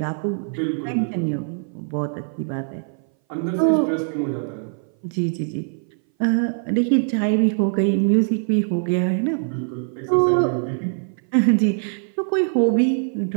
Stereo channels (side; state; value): left; silent; 59 dB below the other